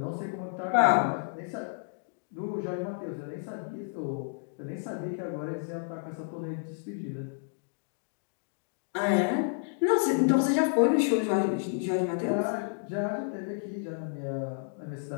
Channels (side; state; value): right; silent; digital silence